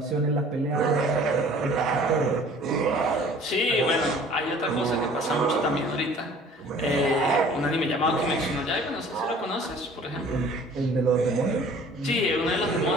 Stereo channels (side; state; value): both; normal; correlation 0.50